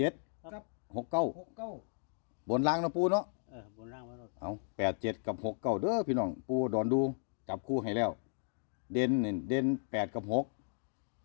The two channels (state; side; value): silent; right; digital silence